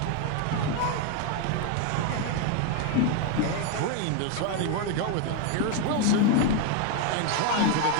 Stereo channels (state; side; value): different; both; correlation 0.01